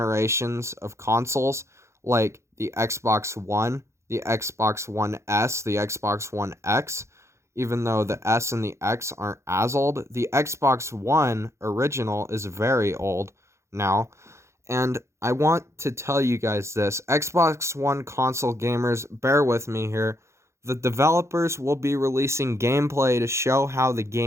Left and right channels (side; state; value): left; late; 0.14 ms